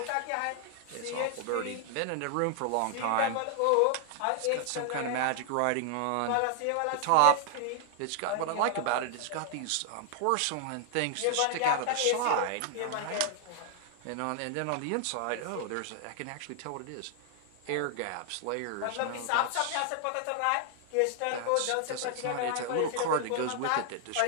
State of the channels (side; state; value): both; different; correlation 0.00